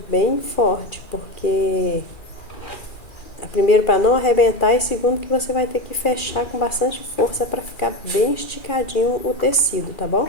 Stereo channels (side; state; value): right; late; 2.4 ms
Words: bem forte, porque primeiro para não arrebentar e segundo que você vai ter que fechar com bastante força para ficar bem esticadinho o tecido, tá bom?